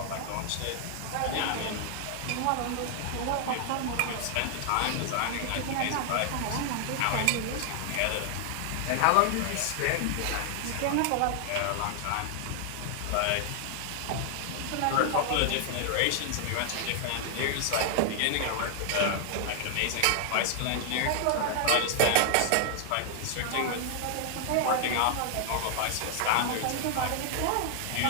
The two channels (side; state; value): both; different; correlation 0.00